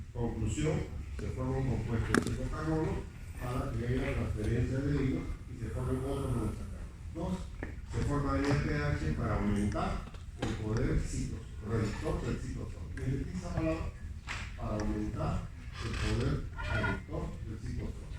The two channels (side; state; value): both; identical; correlation 1.00